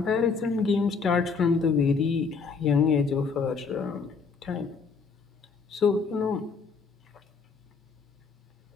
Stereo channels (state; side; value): quieter; right; 5.1 dB